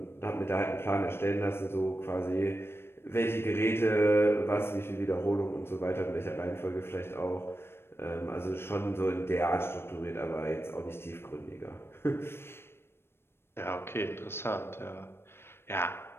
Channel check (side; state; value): right; late; 0.12 ms